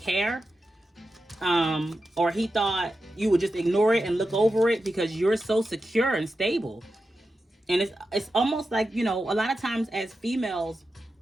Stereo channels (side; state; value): both; normal; correlation 0.90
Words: care. Or he thought you would just ignore it and look over it because you're so secure and stable. And it's almost like, a lot of times as females,